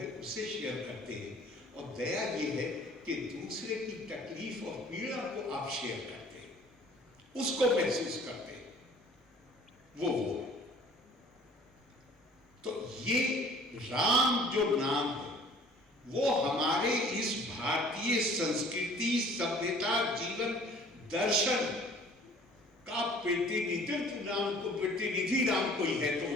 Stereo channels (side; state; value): both; normal; correlation 0.52